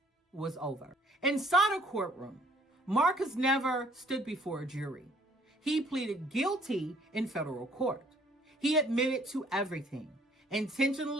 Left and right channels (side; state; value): both; normal; correlation 0.60